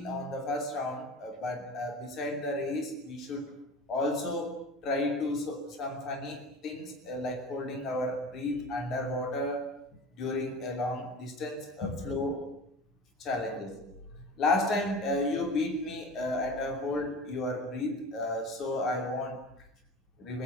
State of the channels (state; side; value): normal; both; correlation 0.35